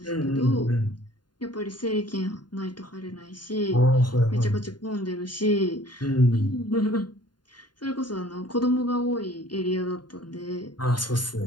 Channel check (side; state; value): right; late; 0.71 ms